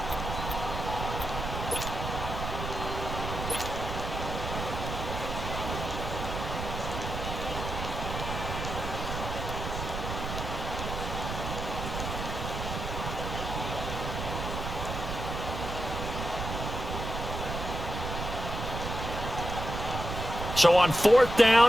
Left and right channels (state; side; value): noise; right; rumble, 5 dB below the sound